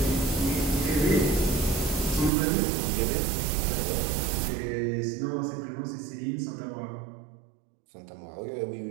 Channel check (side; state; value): left; drops out; at 2.3 s